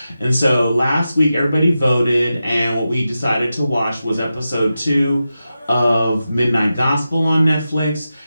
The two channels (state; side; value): inverted; both; correlation -0.91